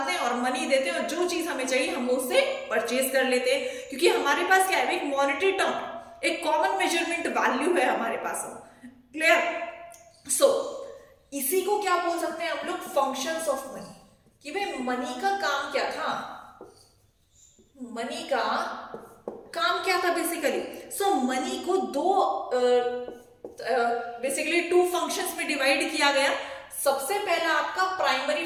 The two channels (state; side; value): identical; both; correlation 1.00